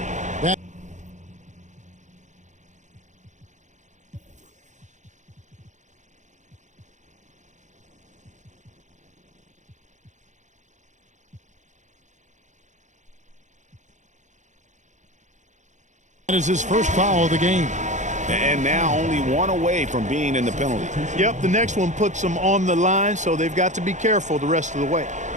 That is his first foul of the game. And now only 1 away from being in the penalty. Yep, the next one puts them on the line, so they've got to be careful the rest of the way.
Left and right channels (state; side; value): late; left; 0.35 ms